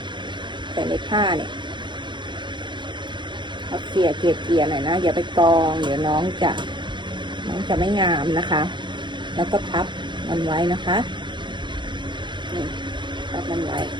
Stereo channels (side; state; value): left; late; 0.23 ms